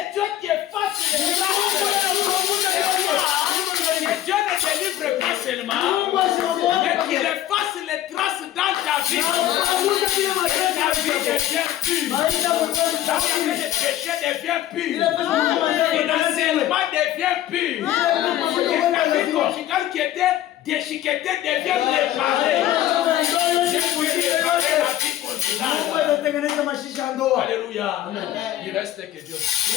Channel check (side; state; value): right; quieter; 13.0 dB